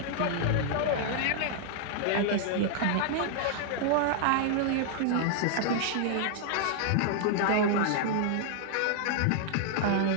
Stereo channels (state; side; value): different; both; correlation -0.01